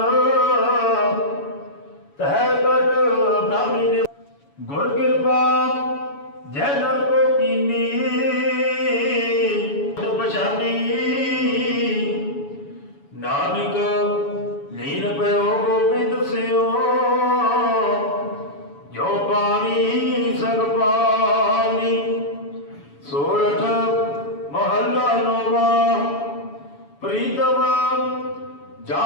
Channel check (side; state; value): right; late; 7.1 ms